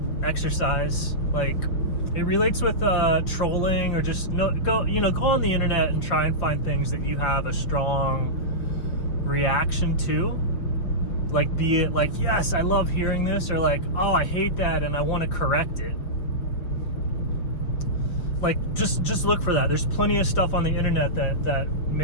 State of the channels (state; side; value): late; right; 5.5 ms